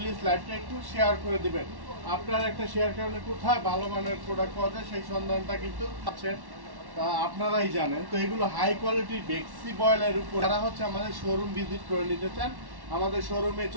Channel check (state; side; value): late; left; 1.1 ms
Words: লাইভটা একটু শেয়ার করে দিবেন। আপনার একটা শেয়ার কারণে কোথায় ভালো মানের প্রোডাক্ট পাওয়া যায় সেই সন্ধানটা কিন্তু আছেন, তা আপনারাই জানেন। তো এগুলো হাই কোয়ালিটির বেক্সি বয়েলের উপর যারা হচ্ছে আমাদের শোরুম ভিজিট করে নিতে চান আমাদের শোরুমে